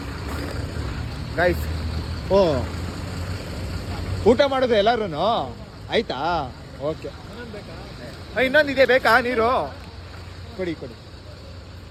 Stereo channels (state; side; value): identical; both; correlation 1.00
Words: ಗೈಸ್. ಓ, ಊಟ ಮಾಡೋದು ಎಲ್ಲರೂ ಆಯ್ತಾ? ಓಕೆ, ಇನ್ನೊಂದಿದೆ, ಬೇಕಾ ನೀರು? ಕೊಡಿ